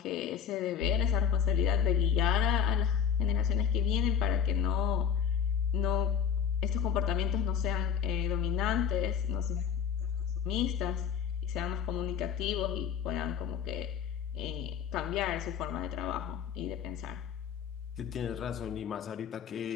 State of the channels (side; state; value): right; quieter; 7.9 dB